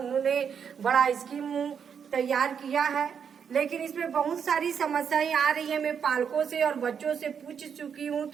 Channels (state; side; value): quieter; left; 7.2 dB